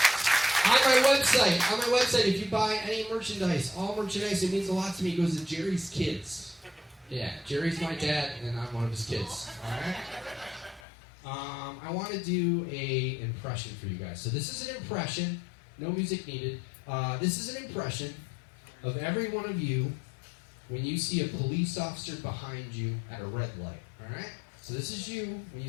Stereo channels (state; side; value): drops out; right; at 10.8 s